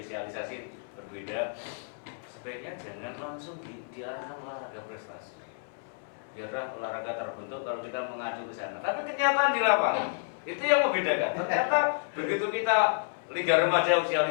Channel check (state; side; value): silent; right; 58 dB below the other